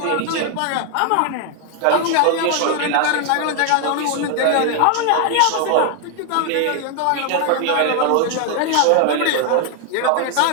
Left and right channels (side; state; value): both; different; correlation 0.00